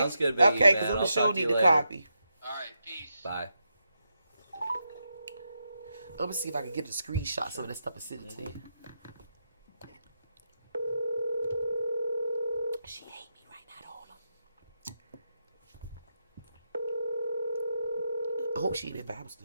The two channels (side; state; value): both; inverted; correlation -0.85